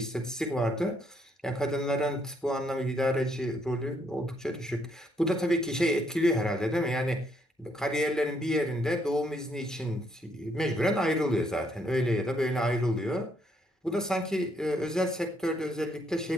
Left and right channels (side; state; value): both; normal; correlation 0.72